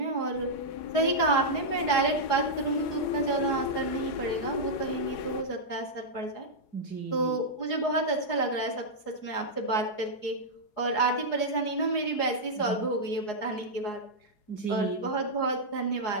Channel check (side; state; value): right; late; 4.8 ms